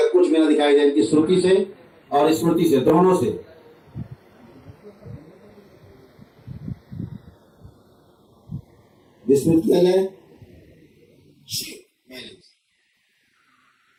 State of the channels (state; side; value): identical; both; correlation 1.00